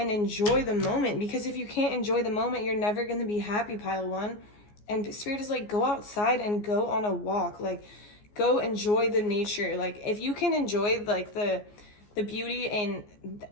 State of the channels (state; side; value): late; right; 14 ms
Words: enjoy the moment. Because if you can't enjoy the moment, you're never going to be happy, Pile 1. And Spirit is like, go outside and go on a walk. Like, go enjoy the nature. Like, if you can enjoy, like, the beauty in